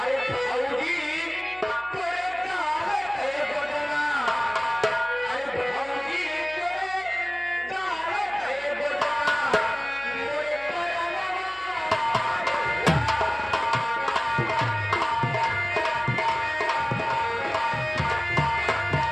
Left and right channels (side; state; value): left; noise; hum, 26 dB below the sound